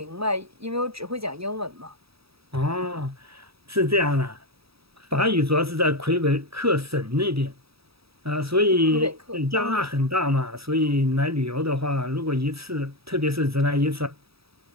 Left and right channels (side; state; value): left; late; 0.77 ms